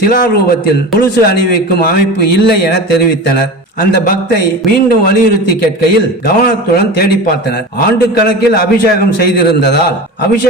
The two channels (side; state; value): both; normal; correlation 0.31